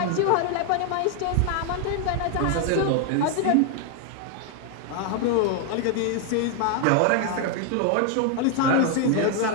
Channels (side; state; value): both; different; correlation 0.01